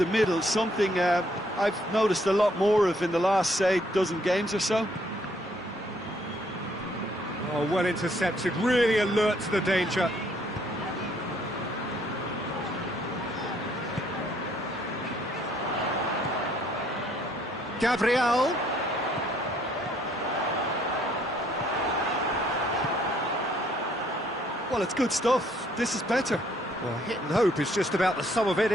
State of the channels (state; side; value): normal; both; correlation 0.66